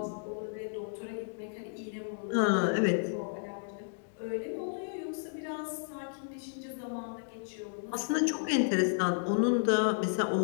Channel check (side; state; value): right; silent; digital silence